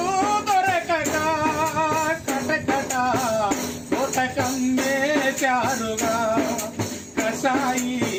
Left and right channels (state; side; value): identical; both; correlation 1.00